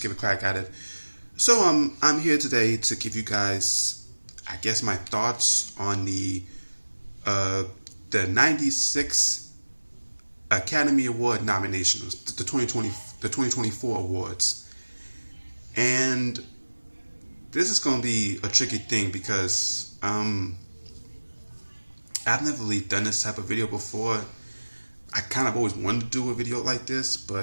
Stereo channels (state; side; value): inverted; both; correlation -1.00